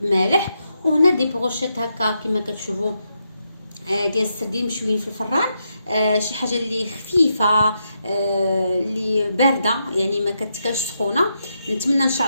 مالح. وهنا دي بروشيت هكا كما كتشوفوا ديال السردين مشويين في الفران، شي حاجه اللي خفيفه اللي بارده يعني ما كتكلش سخونه. نتمنى ان شاء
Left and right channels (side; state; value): both; inverted; correlation -0.82